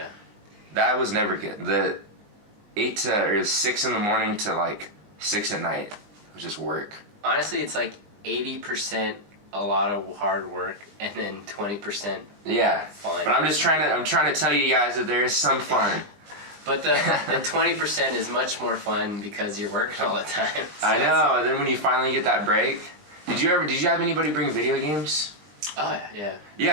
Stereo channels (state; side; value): late; left; 20 ms